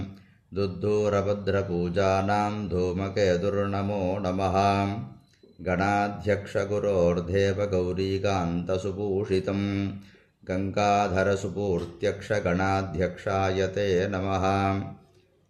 దుద్దూరభద్రపూజానాం ధూమకేతుర్నమో నమః. గణాధ్యక్షగురోర్దేవగౌరీకాन्तసుభూషితం గంగాధరసుపూర్త్యక్ష గణాధ్యక్షాయ తే నమః.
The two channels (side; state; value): both; identical; correlation 1.00